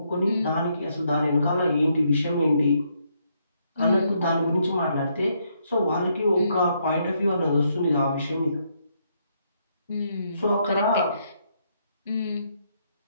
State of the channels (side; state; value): both; inverted; correlation -0.75